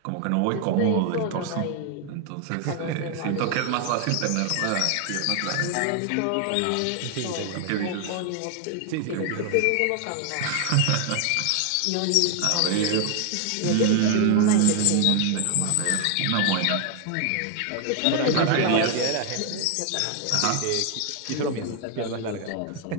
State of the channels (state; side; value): different; both; correlation 0.00